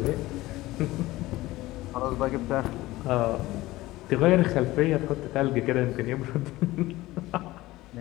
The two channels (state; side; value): quieter; right; 18.1 dB